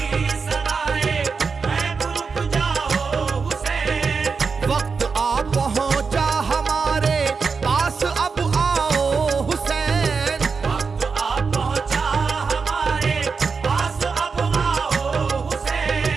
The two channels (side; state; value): left; quieter; 5.1 dB